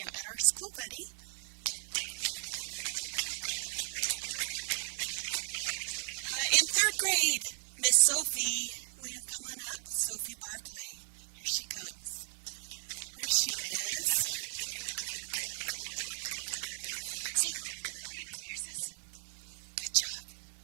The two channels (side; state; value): left; silent; 54 dB below the other